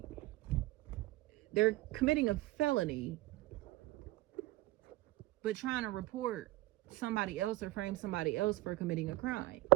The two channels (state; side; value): quieter; left; 18.2 dB